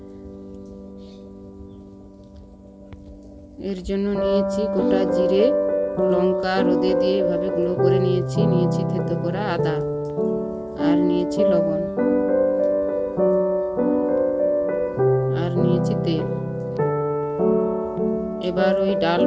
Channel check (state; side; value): identical; both; correlation 1.00